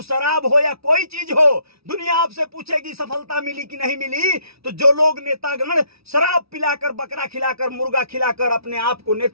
शराब हो या कोई चीज हो, दुनिया आपसे पूछेगी सफलता मिली कि नहीं मिली। तो जो लोग नेतागण शराब पिलाकर, बकरा खिलाकर, मुर्गा खिलाकर अपने आप को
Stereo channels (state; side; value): late; left; 0.77 ms